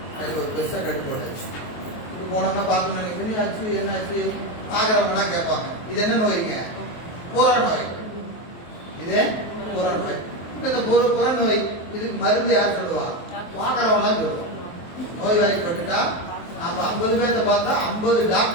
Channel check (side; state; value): right; late; 23 ms